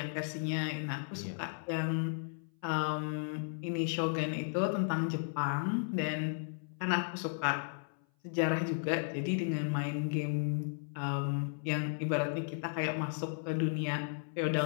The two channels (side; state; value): right; silent; 55 dB below the other